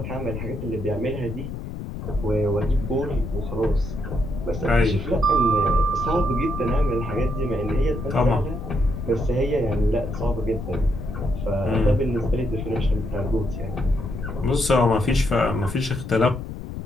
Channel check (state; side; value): noise; left; rumble, 7 dB below the sound